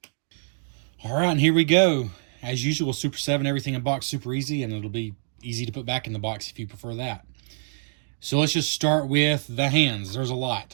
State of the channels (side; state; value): left; silent; digital silence